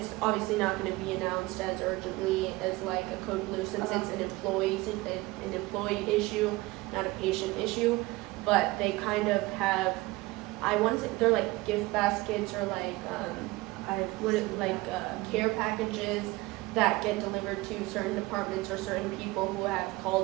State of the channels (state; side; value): quieter; left; 21.1 dB